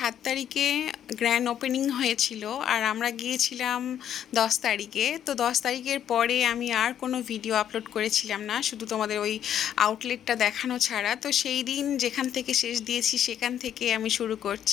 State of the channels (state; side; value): quieter; right; 10.0 dB